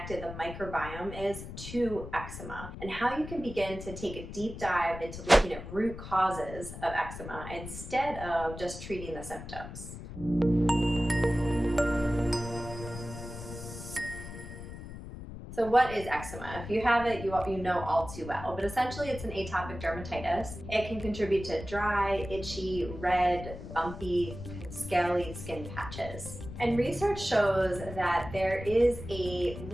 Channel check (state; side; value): noise; left; rumble, 11 dB below the sound